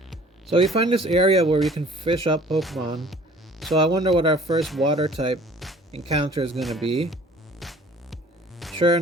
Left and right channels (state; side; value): normal; both; correlation 0.52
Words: So we find this area where we can fish up Pokemon. So I wonder what our first water type encounter is going to be. Sure